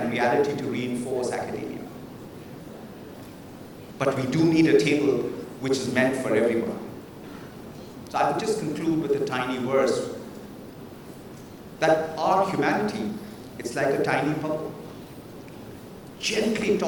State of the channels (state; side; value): identical; both; correlation 1.00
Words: reality to reinforce academia. But we do need a table which is meant for everyone. So I would just conclude with a tiny verse that our humanity, it's like a tiny bubble, gently